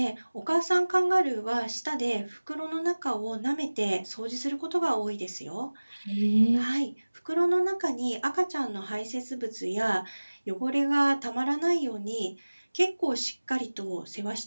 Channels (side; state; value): both; inverted; correlation -1.00